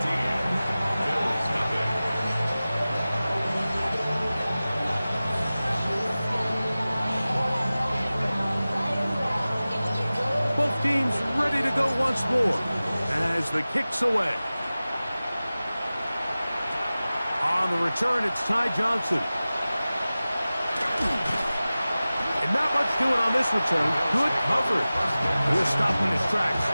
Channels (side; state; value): both; inverted; correlation -0.97